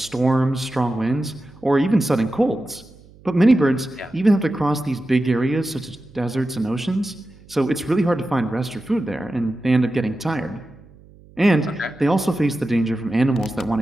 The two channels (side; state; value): right; noise; hum, 25 dB below the sound